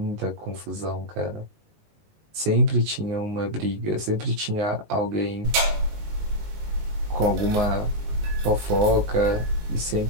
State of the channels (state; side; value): late; left; 19 ms